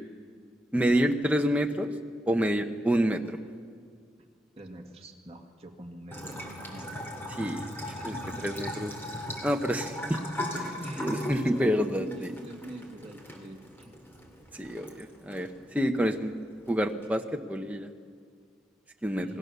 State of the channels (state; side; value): normal; both; correlation 0.83